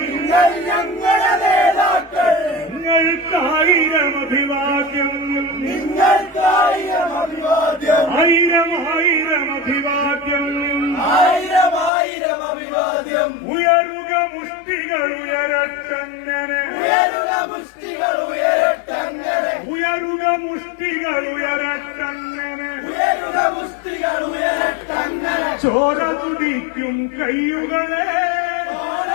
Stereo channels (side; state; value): right; drops out; at 11.9 s